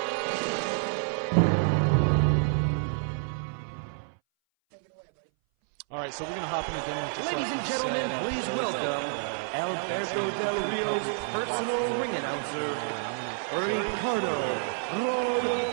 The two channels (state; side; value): silent; left; 59 dB below the other